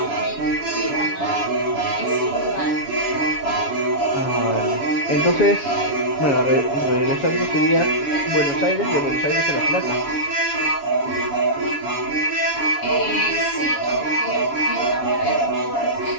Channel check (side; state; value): right; late; 7.1 ms